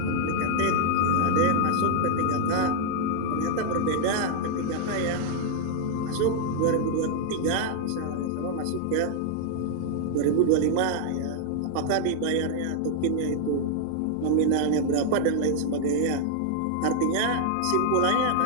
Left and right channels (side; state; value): both; different; correlation -0.01